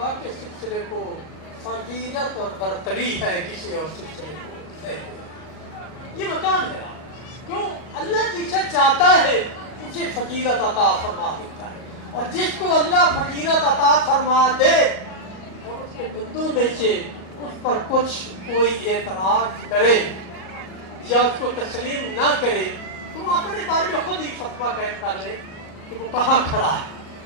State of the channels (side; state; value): right; late; 38 ms